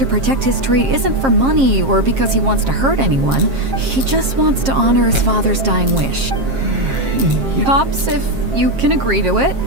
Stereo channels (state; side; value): late; left; 7.4 ms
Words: protect his tree isn't for money or because he wants to hurt anyone. He just wants to honor his father's dying wish. Pops, if you can agree to it,